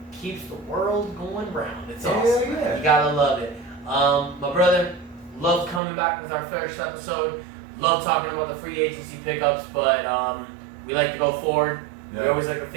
keeps the world going round. It's Hell awesome. yeah. You gotta love it. My brother, love coming back with our first episode. Love talking about the free agency pickups, but we like to go forward. We Yeah. always like to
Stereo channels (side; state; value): left; drops out; at 5.8 s